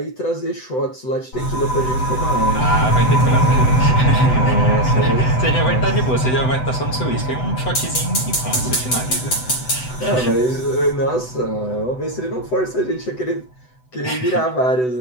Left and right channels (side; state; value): right; late; 7.9 ms